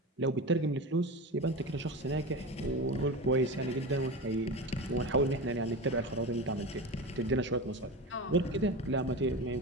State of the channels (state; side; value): normal; both; correlation 0.25